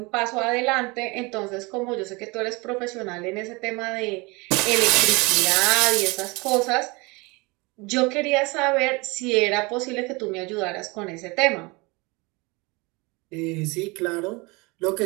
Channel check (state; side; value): quieter; left; 26.0 dB